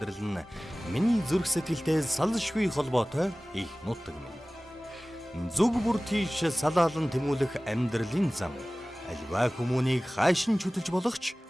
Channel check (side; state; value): both; normal; correlation 0.98